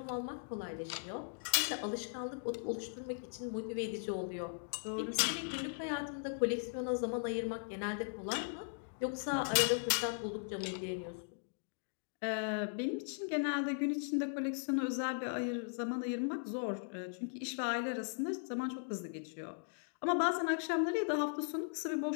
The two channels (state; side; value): silent; right; digital silence